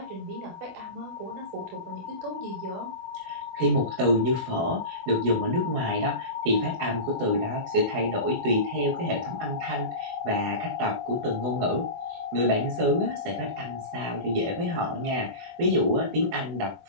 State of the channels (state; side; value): late; left; 24 ms